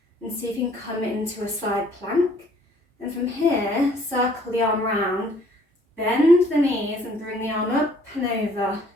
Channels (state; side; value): normal; both; correlation 0.60